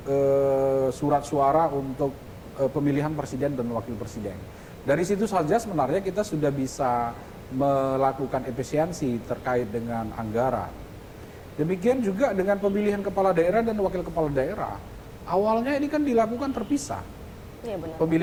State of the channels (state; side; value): identical; both; correlation 1.00